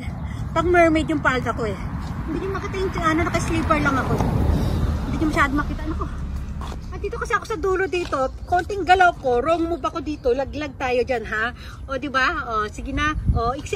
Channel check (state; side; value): identical; both; correlation 1.00